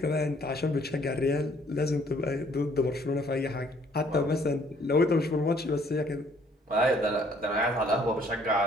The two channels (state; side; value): normal; both; correlation 0.62